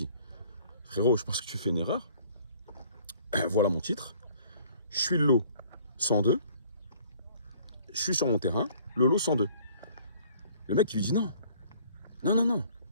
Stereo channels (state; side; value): inverted; both; correlation -0.56